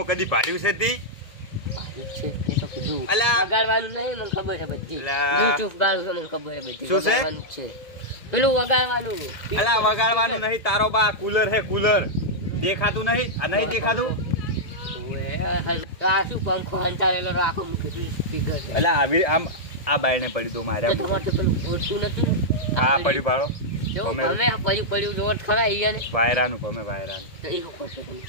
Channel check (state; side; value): late; right; 1.9 ms